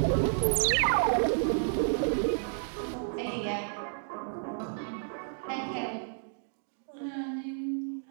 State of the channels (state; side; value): silent; left; digital silence